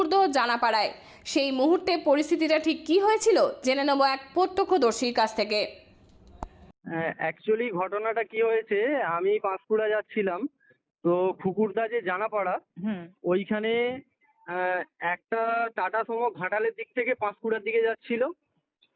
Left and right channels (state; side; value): identical; both; correlation 1.00